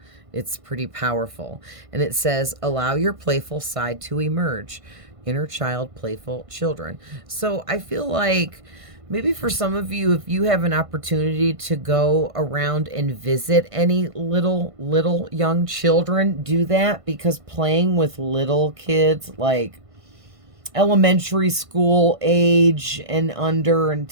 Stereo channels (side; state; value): left; late; 1.5 ms